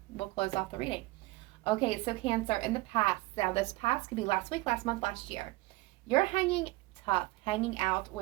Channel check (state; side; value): quieter; left; 20.9 dB